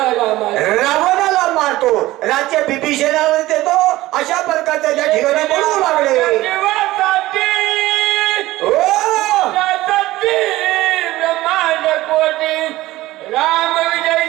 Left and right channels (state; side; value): quieter; left; 17.2 dB